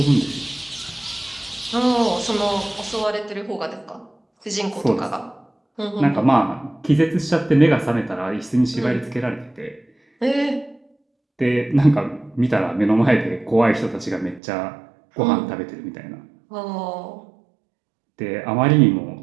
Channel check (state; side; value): drops out; left; at 14.4 s